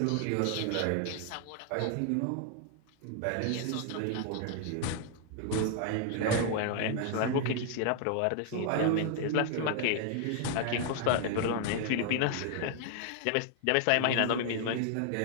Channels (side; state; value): both; different; correlation 0.00